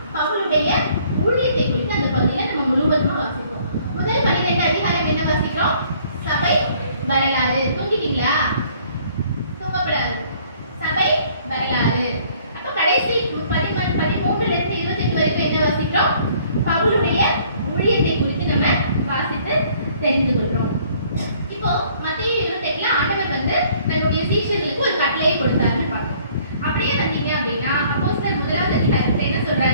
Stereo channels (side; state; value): both; inverted; correlation -0.59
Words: பவுலுடைய ஊழியத்தை குறித்து அந்த பகுதியில நம்ம முழுவதுமா வாசிப்போம். முதல் 12 அதிகாரம் என்ன வாசிக்கிறோம்? சபை வரலாறு. தூங்கிட்டீங்களா? தூங்கப்படாது. சபை வரலாறு. அப்ப கடைசி 13ல இருந்து 28 வரைக்கும் என்ன வாசிக்கிறோம்? பவுலுடைய ஊழியத்தை குறித்து நம்ம வாசித்து தெரிந்து கொள்றோம். இப்போ மத்தேயு 28ல ஆண்டவர் வந்து தன்னுடைய சீஷர்களுக்கு ஒரு கட்டளையை கொடுத்தாருன்னு பார்க்கிறோம். அப்படியே வந்தீங்க அப்படின்னா அப்போஸ்தலர் 1ஆம் அதிகாரத்துல என்ன